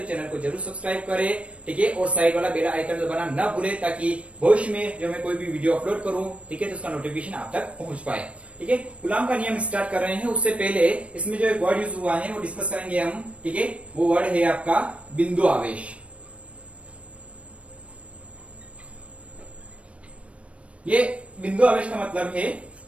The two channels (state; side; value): late; left; 0.062 ms